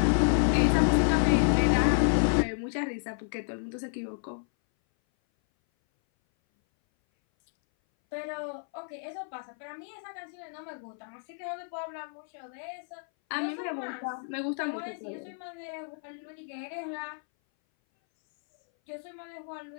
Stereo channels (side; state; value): right; silent; 58 dB below the other